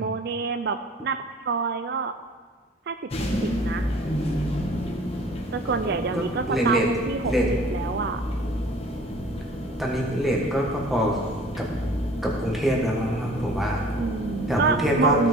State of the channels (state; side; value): normal; both; correlation 0.48